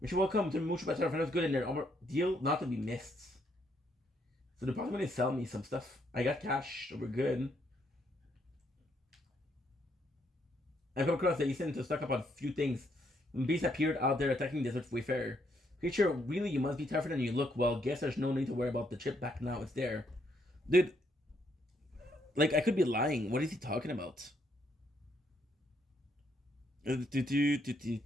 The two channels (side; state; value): both; normal; correlation 0.73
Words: You're welcome to Mucho Better. If it was good in there, deal not to be missed. So they're probably gonna sell me some stuff. I got cash, so we're good. I come across that you seem to stock up on a few things. When beasts appeared out there attacking desert wayfarer. Creature, really, you must be tougher than you look. Well, guess there's no need to worry about the chip back now. It's there. Dude, like, I could be lying. What is he talking about?